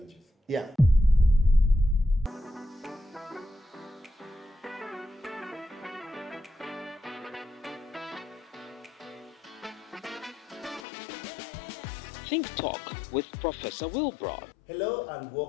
Yeah. Think Talk with Professor Wilbroad. Hello and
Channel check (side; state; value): right; drops out; at 10.9 s